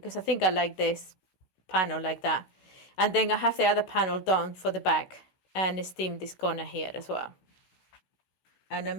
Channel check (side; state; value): right; late; 16 ms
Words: I think I like this panel like that. And then I have the other panel done for the back and steam this corner here as well. And